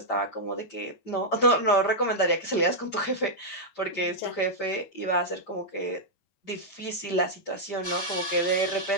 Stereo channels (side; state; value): right; late; 9.0 ms